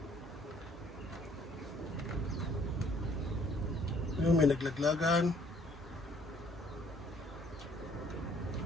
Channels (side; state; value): both; normal; correlation 0.61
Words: Yung may naglaglagan.